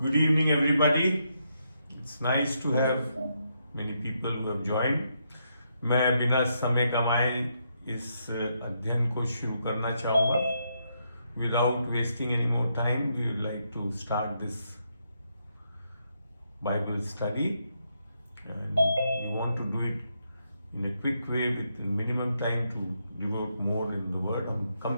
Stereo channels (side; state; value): both; inverted; correlation -0.79